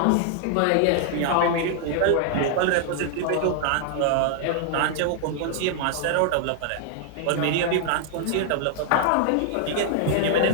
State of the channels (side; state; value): both; different; correlation 0.00